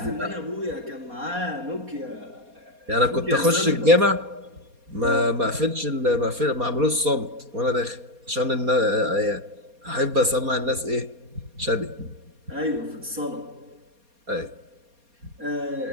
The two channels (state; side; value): late; left; 4.2 ms